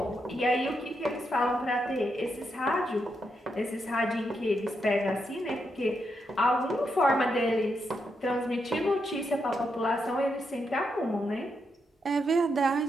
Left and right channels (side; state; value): both; normal; correlation 0.82